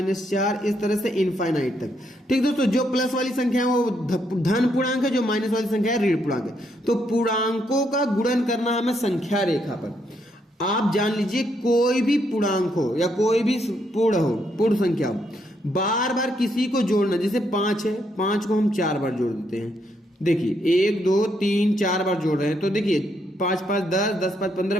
इस तरह से इनफाइनाइट तक। ठीक दोस्तों, जो प्लस वाली संख्या है वो धन पूर्णांक है, जो माइनस वाली संख्या है ऋण पूर्णांक है। तो पूर्णांकों का गुणन करना है हमें संख्या रेखा पर। आप जान लीजिए, कोई भी पूर्णांक हो या कोई भी पूर्ण संख्या हो, बार बार किसी को जोड़ना। जैसे 5 है, 5 को हम 4 बार जोड़ देते हैं। देखिए 1 2 3 4 बार जोड़ रहे हैं, तो देखिए 5 5 10, 10 5 15,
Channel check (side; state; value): both; normal; correlation 0.76